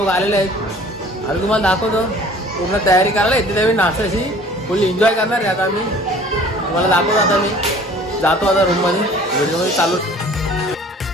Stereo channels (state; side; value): normal; both; correlation 0.49